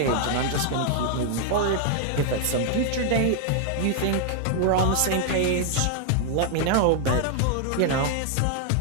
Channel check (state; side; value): different; both; correlation 0.00